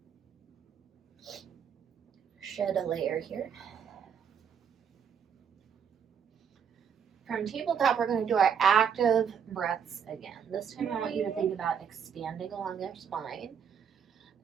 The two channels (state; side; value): quieter; left; 7.4 dB